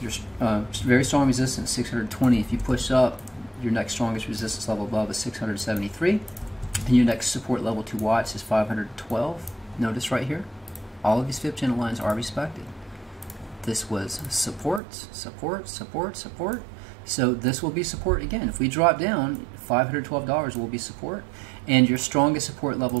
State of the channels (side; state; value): left; drops out; at 14.8 s